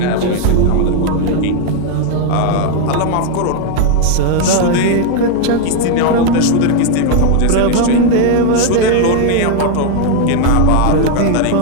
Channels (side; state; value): both; different; correlation 0.01